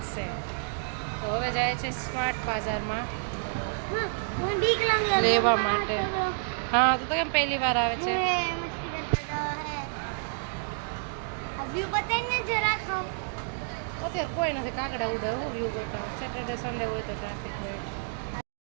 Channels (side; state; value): left; silent; digital silence